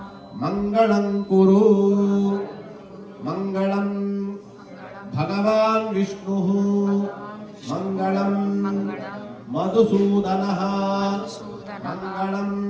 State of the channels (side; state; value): both; identical; correlation 1.00